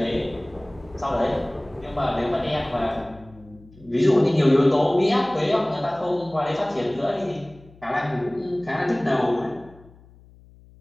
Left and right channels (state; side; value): noise; left; hum, 25 dB below the sound